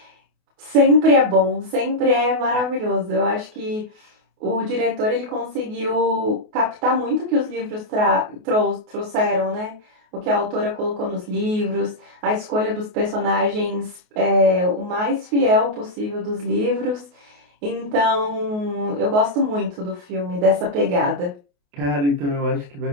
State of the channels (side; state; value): left; late; 28 ms